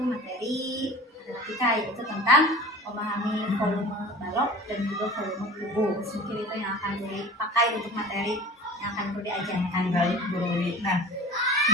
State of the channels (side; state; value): both; normal; correlation 0.39